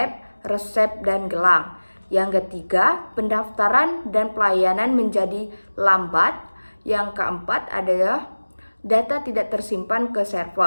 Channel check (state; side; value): inverted; both; correlation -1.00